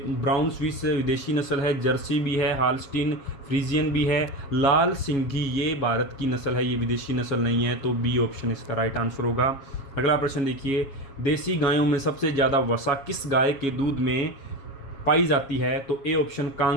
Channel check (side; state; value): right; late; 7.3 ms